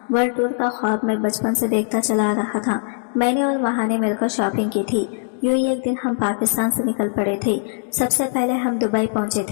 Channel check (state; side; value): silent; right; digital silence